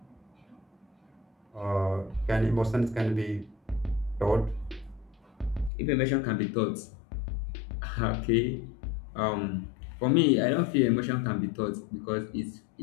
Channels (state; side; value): drops out; right; at 5.7 s